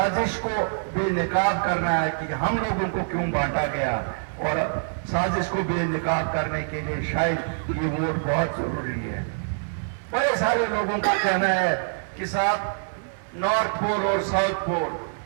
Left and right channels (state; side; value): silent; left; digital silence